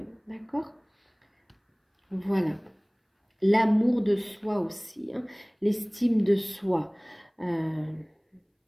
D'accord? Voilà. L'amour de soi aussi, hein, l'estime de soi.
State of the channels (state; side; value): identical; both; correlation 1.00